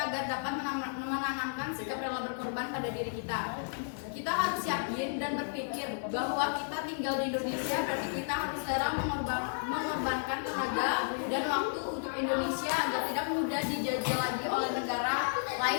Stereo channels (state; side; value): silent; right; digital silence